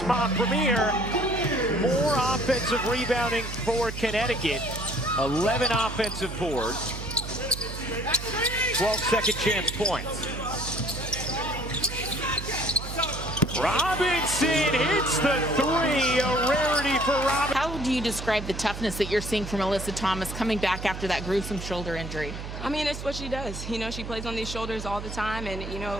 Montpremier. More offensive rebounding for Connecticut. 11 offensive boards. 12 second chance points. Robinson hits the 3, a rarity for Robinson. How do you describe the toughness that you're seeing from Alyssa Thomas coming back after that gruesome shoulder injury? I mean, it's what she does. You know, she plays on these shoulders all the time, and, you know, it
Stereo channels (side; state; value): right; noise; hum, 8 dB below the sound